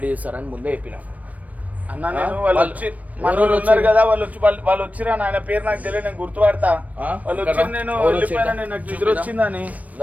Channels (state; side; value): late; left; 0.071 ms